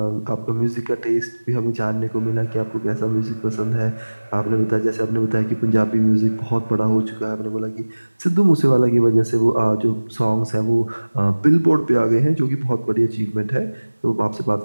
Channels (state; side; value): inverted; both; correlation -1.00